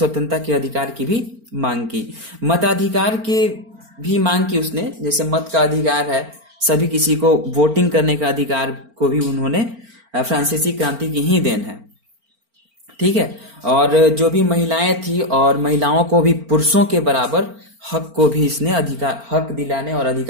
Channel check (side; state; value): left; late; 4.4 ms